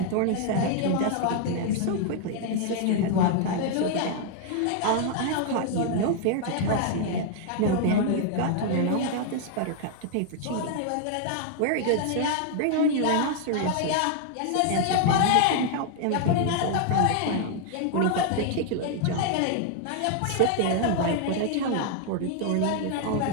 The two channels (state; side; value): different; both; correlation 0.00